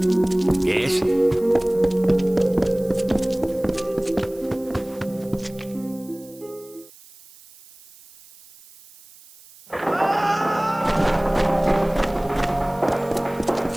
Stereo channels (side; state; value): right; noise; hiss, 23 dB below the sound